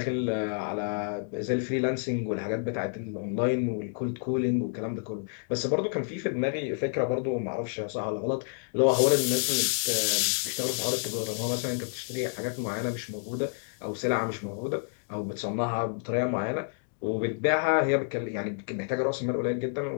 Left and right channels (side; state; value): right; silent; digital silence